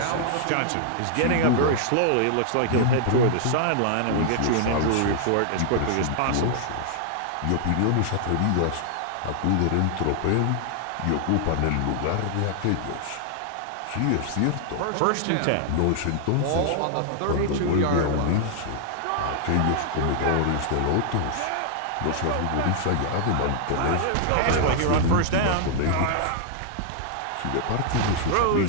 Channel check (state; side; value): different; both; correlation -0.01